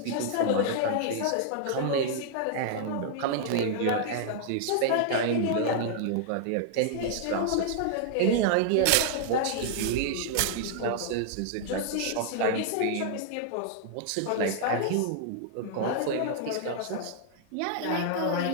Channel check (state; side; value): different; both; correlation -0.01